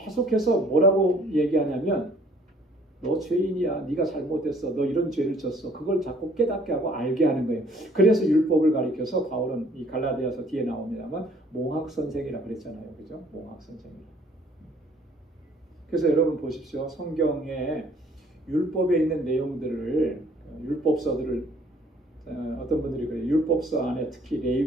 뭐라고 얘기하냐면 너 죄인이야. 네가 잘못했어. 너 이런 죄를 졌어. 그걸 자꾸 깨닫게 하고 알게 하는 거예요. 그래서 율법을 가리켜서 바울은 이 갈라디아서 뒤에 나옵니다만 몽학선생이라 그랬잖아요. 그죠? 몽학선생이라. 그래서 여러분 보십시오. 성경에 율법에 있는 내용들을 율법서들을 어떤 분들이 그래요. 율법서 안에 특히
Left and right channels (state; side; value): normal; both; correlation 0.59